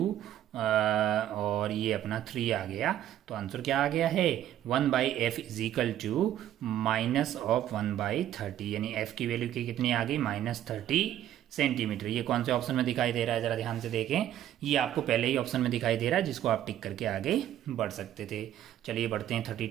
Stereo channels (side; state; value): left; quieter; 11.8 dB